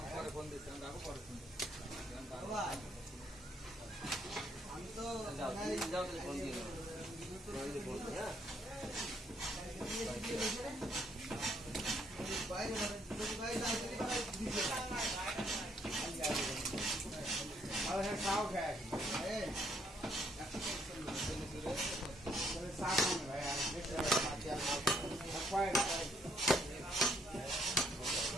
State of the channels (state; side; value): normal; both; correlation 0.70